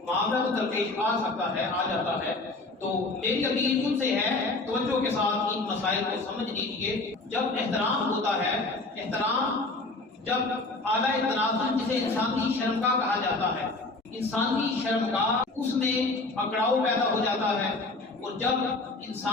معاملہ تو درپیش آ سکتا ہے، آ جاتا ہے، تو میری اپیل ان سے ہے توجہ کے ساتھ ان مسائل کو سمجھ لیجیے۔ جب احترام ہوتا ہے، احترام جب اعلیٰ تناسل جسے انسانی شرمگاہ کہا جاتا ہے، انسانی شرمگاہ اس میں اکڑاؤ پیدا ہو جاتا ہے، اور جب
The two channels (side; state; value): right; quieter; 3.2 dB